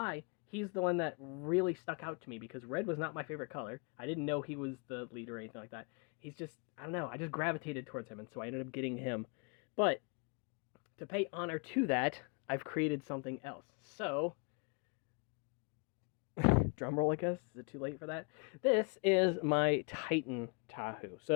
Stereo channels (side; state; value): right; quieter; 36.2 dB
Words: he's the one that really stuck out to me because red was not my favorite color. I didn't know he was the leader or anything like that. He's just, I don't know, I just gravitated towards him, and so I ended up getting him. But to pay honor to that, I've created something else. So, drum roll, I guess. Is it too late for that? This is my Titan Tahu.